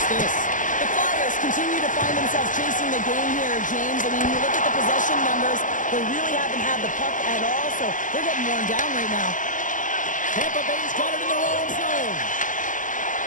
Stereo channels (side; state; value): right; late; 0.38 ms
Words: this? The Flyers continue to find themselves chasing the game here, James. I mean, you look at the possession numbers, they really haven't had the puck at all, so they're getting worn down right now. Tampa Bay's got it in their own zone.